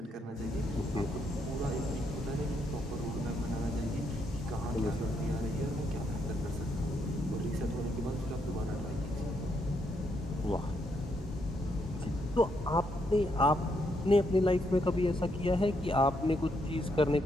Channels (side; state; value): both; normal; correlation 0.77